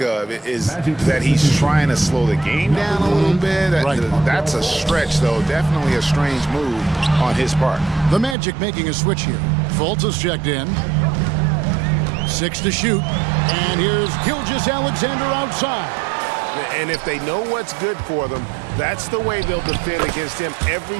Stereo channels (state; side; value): drops out; left; at 8.3 s